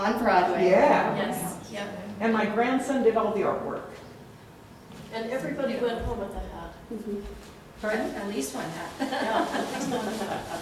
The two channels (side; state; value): both; identical; correlation 1.00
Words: Broadway. Yeah. Yes, yep. And my grandson did all the artwork. And everybody went home with a hat. Pardon? At least one hat. Yeah, at least one hat.